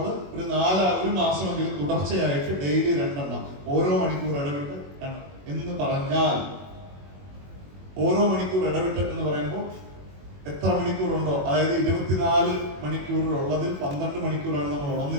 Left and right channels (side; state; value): left; late; 21 ms